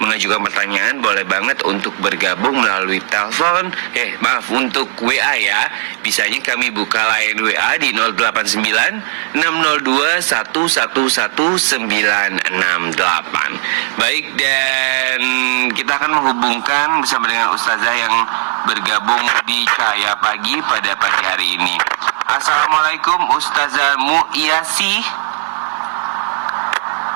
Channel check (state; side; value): silent; left; digital silence